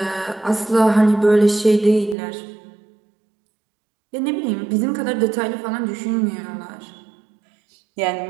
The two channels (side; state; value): left; drops out; at 2.1 s